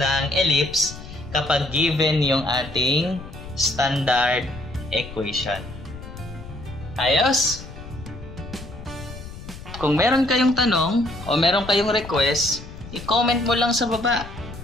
ellipse kapag given yung ating standard equation. Ayos? Kung meron kayong tanong o meron kayong request, i-comment mo lang sa baba.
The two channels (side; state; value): left; noise; rumble, 14 dB below the sound